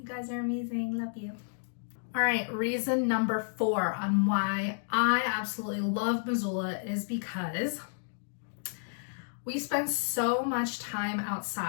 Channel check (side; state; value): right; silent; digital silence